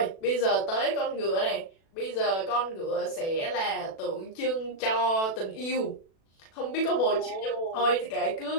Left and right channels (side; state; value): right; late; 36 ms